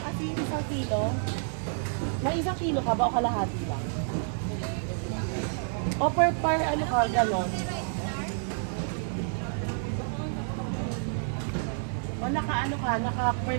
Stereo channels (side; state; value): left; silent; 58 dB below the other